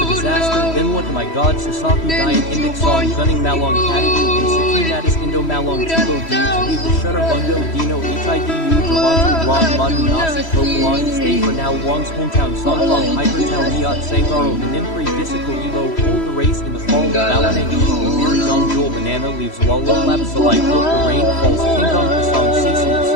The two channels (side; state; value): right; late; 3.1 ms